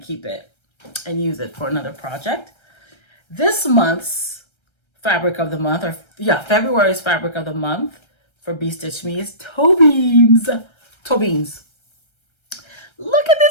it and use it for another project. This month's fabric of the month, February's fabric of the month for Bee Stitch Me is toe beans. Toe beans. Look at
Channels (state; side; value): late; right; 1.3 ms